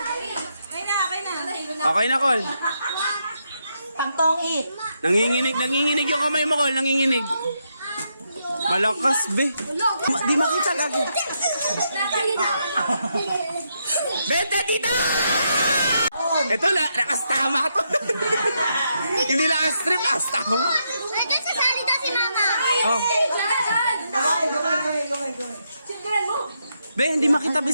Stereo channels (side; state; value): both; inverted; correlation -0.80